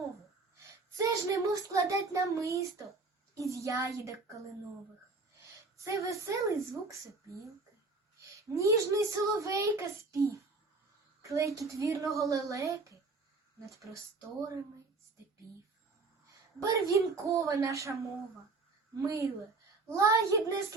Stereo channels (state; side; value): quieter; left; 3.9 dB